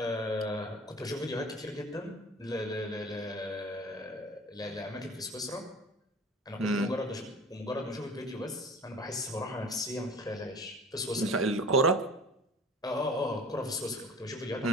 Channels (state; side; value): normal; both; correlation 0.42